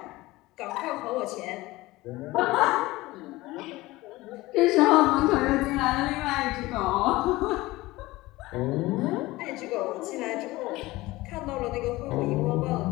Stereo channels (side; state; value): right; quieter; 19.4 dB